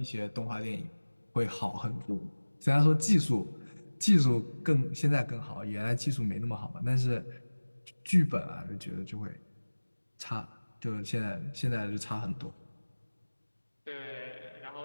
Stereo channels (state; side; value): inverted; both; correlation -1.00